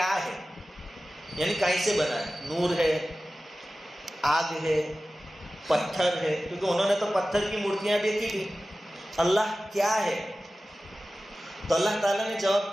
ہے، یعنی کہیں سے بنا ہے، نور ہے، آگ ہے، پتھر ہے، کیونکہ انہوں نے تو پتھر کی مورتیاں دیکھی تھی. اللہ کیا ہے؟ تو اللہ تعالیٰ نے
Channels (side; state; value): both; normal; correlation 0.95